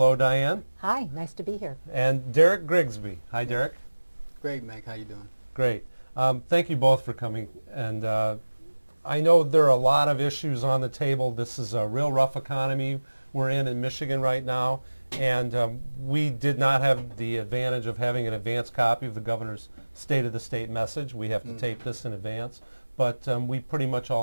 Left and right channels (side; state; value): both; inverted; correlation -1.00